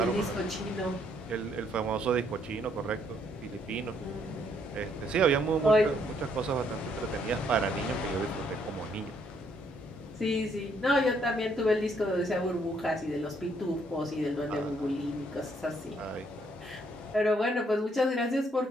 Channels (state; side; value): normal; both; correlation 0.70